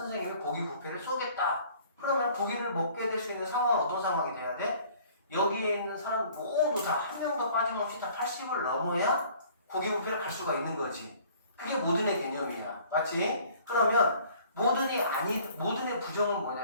고기 뷔페를 쏘겠다. 그러면 고기를 먹게 될 수 있는 상황은 어떤 상황이 돼야 돼? 여기에 있는 사람 모두 다 한 명도 빠짐없이 다 80을 넘어야 고기 뷔페를 갈 수가 있는 거지. 그게 모든의 개념이야. 맞지? 그러면 모든의 부정은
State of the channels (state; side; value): inverted; both; correlation -0.54